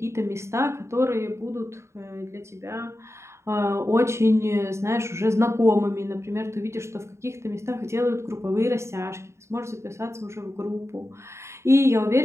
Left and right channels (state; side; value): late; left; 0.13 ms